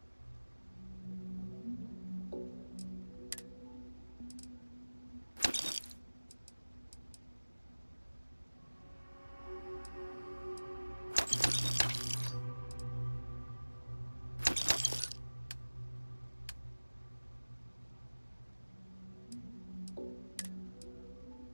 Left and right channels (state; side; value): inverted; both; correlation -1.00